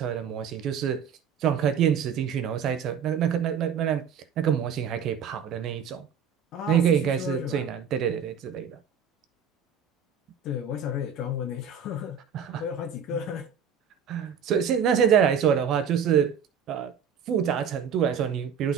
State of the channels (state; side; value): quieter; left; 7.0 dB